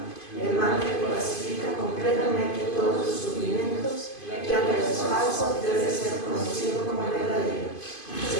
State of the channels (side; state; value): right; late; 2.5 ms